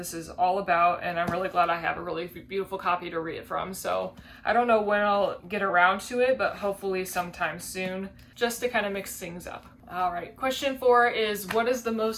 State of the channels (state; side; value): identical; both; correlation 1.00